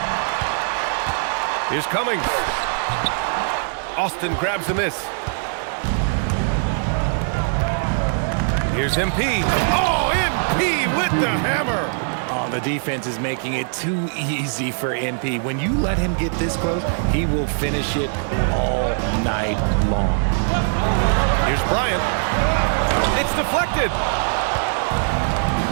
Here's Cummings. Austin grabs the miss. Here's MP. Oh, MP with the hammer. Oh, the defense is making it too easy for MP. When you let him get this close, he will finish it all night long. Here's Bryant. It's deflected.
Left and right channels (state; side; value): silent; left; 59 dB below the other